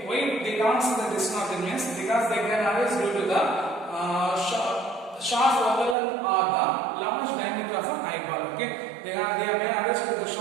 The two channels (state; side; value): drops out; left; at 6.0 s